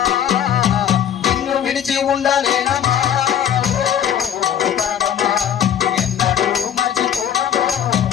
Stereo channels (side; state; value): right; quieter; 9.6 dB